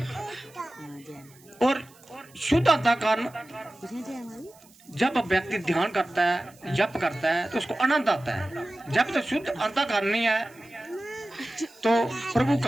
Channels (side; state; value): right; noise; hiss, 26 dB below the sound